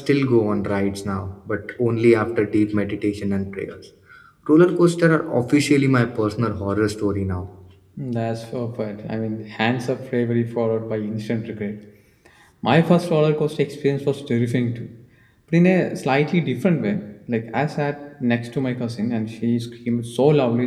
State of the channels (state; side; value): identical; both; correlation 1.00